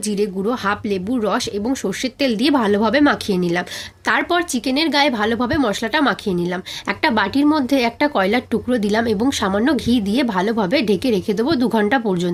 জিরে গুঁড়ো, হাফ লেবুর রস এবং সর্ষের তেল দিয়ে ভালোভাবে মাখিয়ে নিলাম। তারপর চিকেনের গায়ে ভালোভাবে মশলাটা মাখিয়ে নিলাম। একটা বাটির মধ্যে একটা কয়লার টুকরো দিলাম এবং সামান্য ঘি দিয়ে ভালোভাবে ঢেকে রেখে দেবো 2 ঘন্টা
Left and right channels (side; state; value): both; identical; correlation 1.00